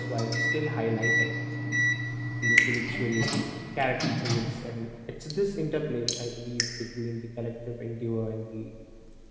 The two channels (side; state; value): both; identical; correlation 1.00